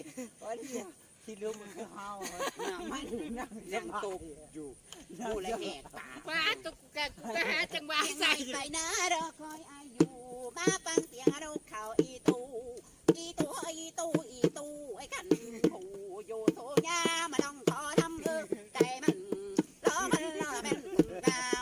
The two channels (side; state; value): both; identical; correlation 1.00